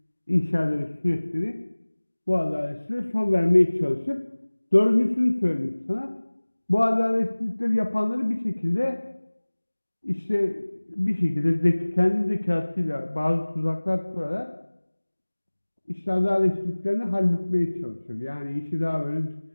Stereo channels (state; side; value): inverted; both; correlation -1.00